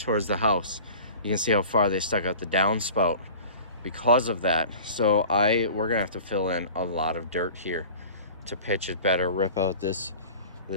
the house. You can see how far they stuck out the downspout because of that. So we're gonna have to fill in a lot of dirt here to pitch it better, rip out this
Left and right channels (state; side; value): inverted; both; correlation -0.41